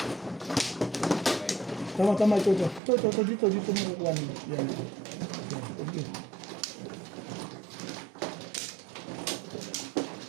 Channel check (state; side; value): drops out; left; at 2.8 s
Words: Tama, ito. Ito, dito mo kukuha nila. Yan. Okay.